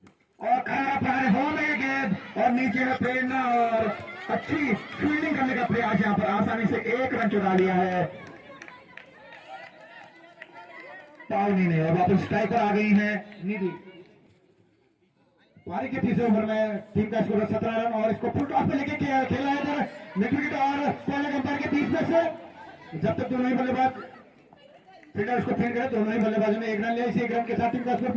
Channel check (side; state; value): both; identical; correlation 1.00